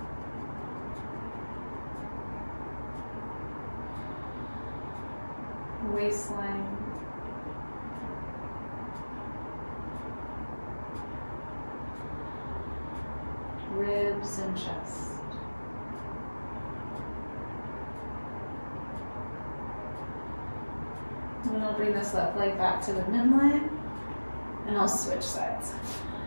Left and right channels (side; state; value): both; inverted; correlation -1.00